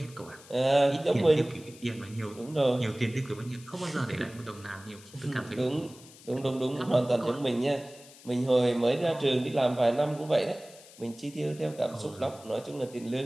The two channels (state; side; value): noise; left; hiss, 21 dB below the sound